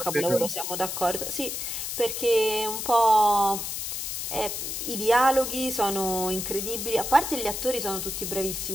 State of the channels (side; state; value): left; noise; hiss, 4 dB below the sound